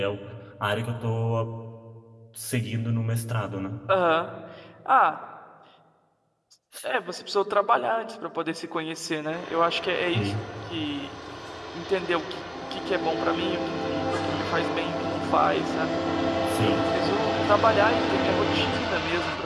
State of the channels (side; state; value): both; identical; correlation 1.00